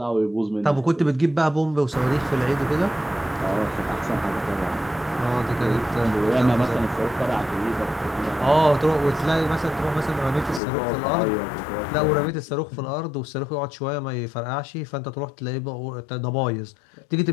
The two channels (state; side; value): drops out; right; at 10.6 s